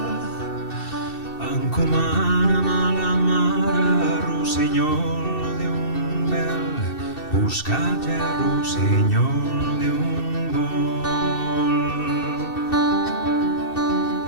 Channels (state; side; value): late; right; 2.7 ms